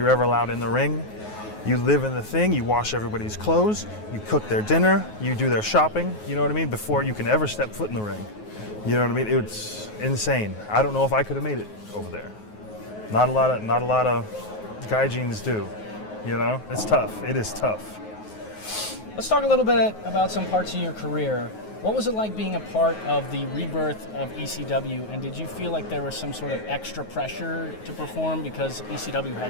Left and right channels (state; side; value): late; right; 9.4 ms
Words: ever allowed in the ring. You live in the thing, you wash everybody's clothes, you cook their dinner, you do their shopping, you know what I mean, before you can ever step foot in the ring. You know what I mean? It's insane. I don't know if I could have made it over there. Not a lot of gaijins do. It's tough. It is tough. Let's talk a little bit about some parts of your career. What was it like being a part of the rebirth of ECW, and did you feel like there was some sort of extra pressure to perform because